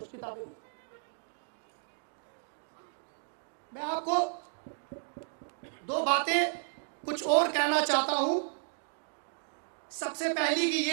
किताबें मैं आपको दो बातें कुछ और कहना चाहता हूं। सबसे पहली की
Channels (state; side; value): silent; left; digital silence